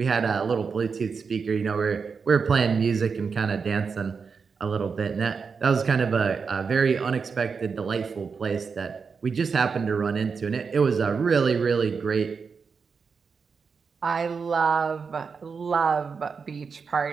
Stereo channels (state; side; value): quieter; left; 5.5 dB